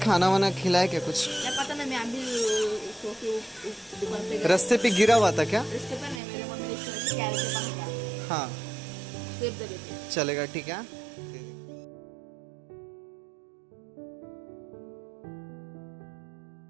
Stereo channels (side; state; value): left; drops out; at 6.2 s